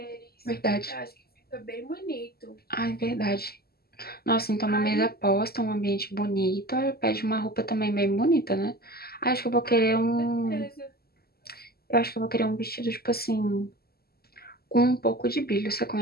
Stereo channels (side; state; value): right; late; 0.45 ms